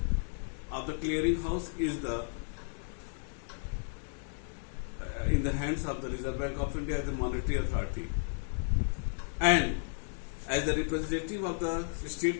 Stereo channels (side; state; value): right; silent; 56 dB below the other